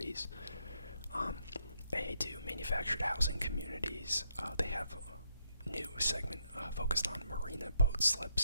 They do manufactured housing communities. They have a new segment focused on marina boat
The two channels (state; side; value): inverted; both; correlation -0.75